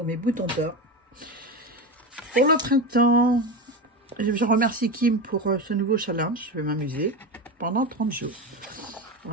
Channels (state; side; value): normal; both; correlation 0.20